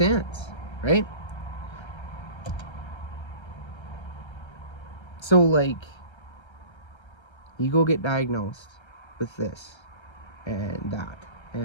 right? So, like, you go get diagnosed with this and that,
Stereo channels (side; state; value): right; late; 1.3 ms